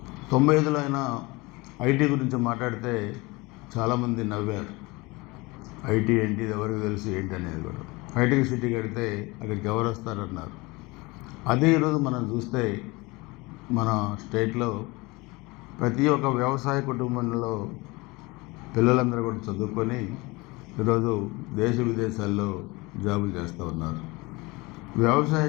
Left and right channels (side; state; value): right; quieter; 24.1 dB